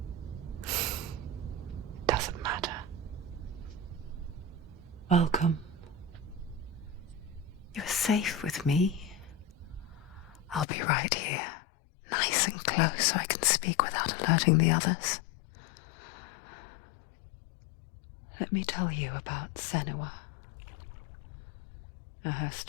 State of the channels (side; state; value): right; drops out; at 10.7 s